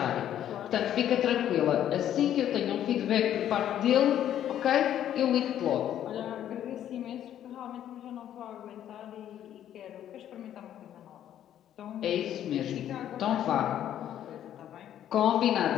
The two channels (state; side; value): quieter; right; 11.0 dB